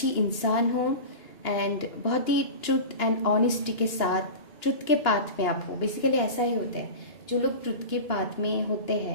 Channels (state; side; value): late; right; 2.9 ms